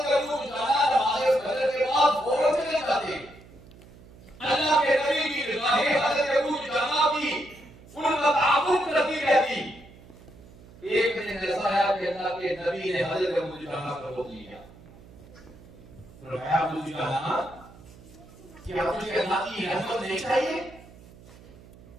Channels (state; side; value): noise; right; hum, 21 dB below the sound